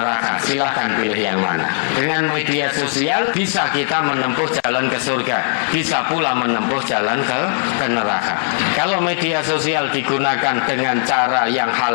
Silahkan pilih yang mana. Dengan media sosial bisa kita menempuh jalan ke surga, bisa pula menempuh jalan ke neraka. Kalau media sosial digunakan dengan cara yang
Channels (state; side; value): silent; right; digital silence